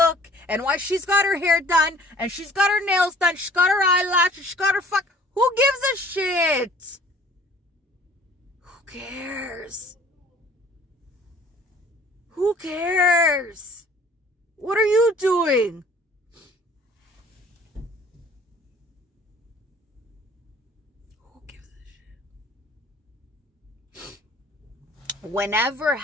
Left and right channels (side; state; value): both; normal; correlation 0.52